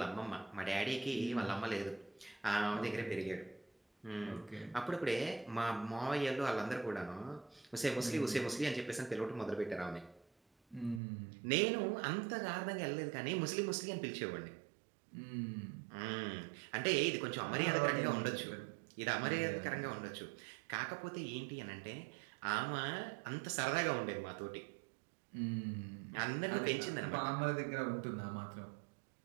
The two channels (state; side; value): drops out; left; at 11.0 s